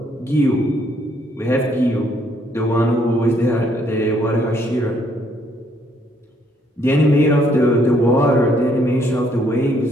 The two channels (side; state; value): both; normal; correlation 0.68